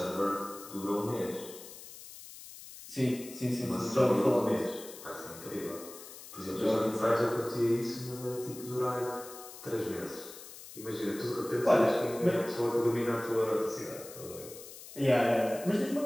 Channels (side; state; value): left; noise; hiss, 15 dB below the sound